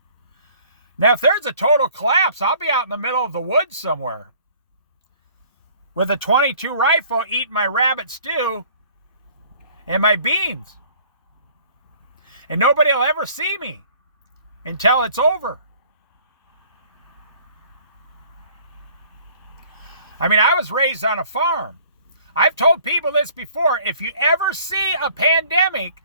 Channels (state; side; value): inverted; both; correlation -0.55